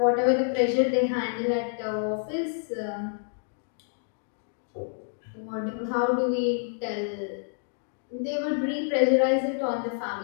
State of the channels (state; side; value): silent; right; digital silence